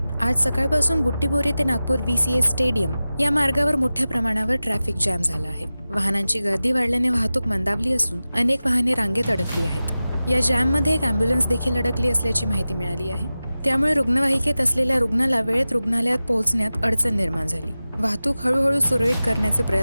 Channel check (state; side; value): inverted; both; correlation -0.95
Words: आज सकाळपासून बुट्टीबोरी ते नागपूर VCS स्टेडियम या मार्गावर मोठ्या प्रमाणावर ट्रॅफिक जॅम झाला आहे. वाहनांची गर्दी वाढल्याने वाहतूक मंदावली असून अनेक वाहने रांगेत अडकली आहेत. या जॅममध्ये एक अँब्युलन्स देखील अडकली असल्याची माहिती मिळाली आहे. त्यामुळे रुग्णवाहिकेत असलेल्या रुग्णाला वेळेत रुग्णालयात पोहोचण्यात अडचण निर्माण झाली. वाहतूक हळूहळू सुरळीत करण्याचे